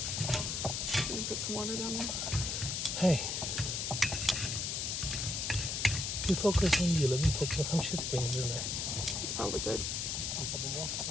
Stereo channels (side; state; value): left; noise; hiss, 1 dB below the sound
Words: Put some water down there. Hey. You focus on you. Let me focus on how much shit we need in there. It's probably good. A couple more.